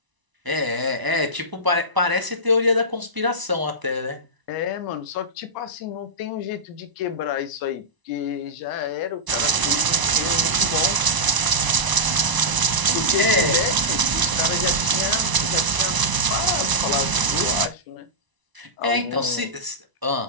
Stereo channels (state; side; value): late; left; 1.0 ms